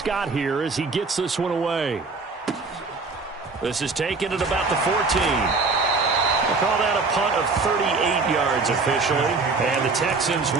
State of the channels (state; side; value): quieter; left; 4.0 dB